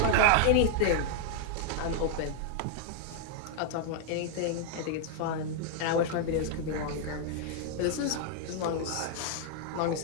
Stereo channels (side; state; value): both; different; correlation 0.00